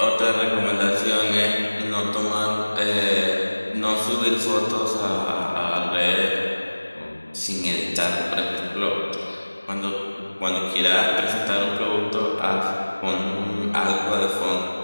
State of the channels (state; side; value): inverted; both; correlation -1.00